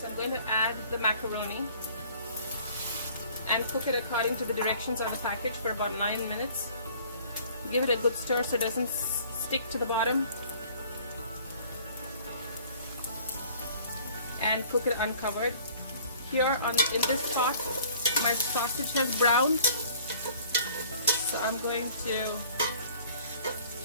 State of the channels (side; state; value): both; inverted; correlation -0.53